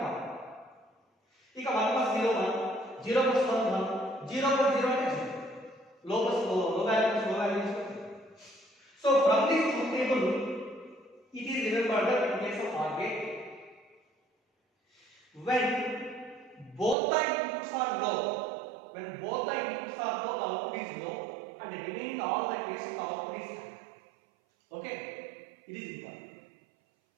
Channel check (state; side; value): drops out; left; at 16.9 s